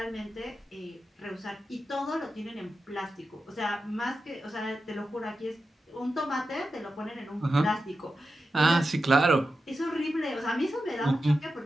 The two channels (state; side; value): normal; both; correlation 0.91